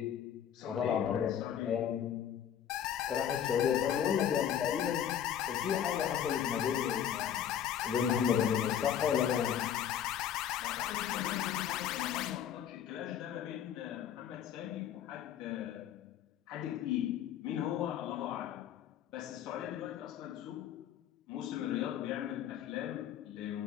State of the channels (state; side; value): quieter; right; 9.6 dB